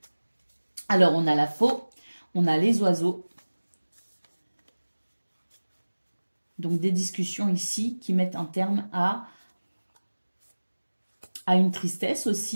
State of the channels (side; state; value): both; inverted; correlation -1.00